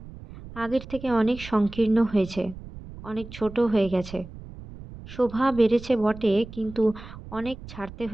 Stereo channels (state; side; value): noise; right; rumble, 15 dB below the sound